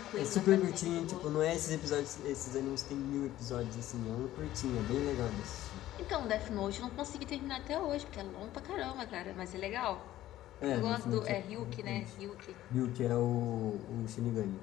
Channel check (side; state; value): right; quieter; 14.1 dB